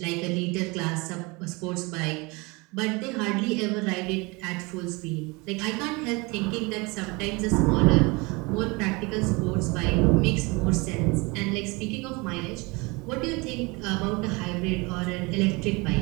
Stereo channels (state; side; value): quieter; left; 26.4 dB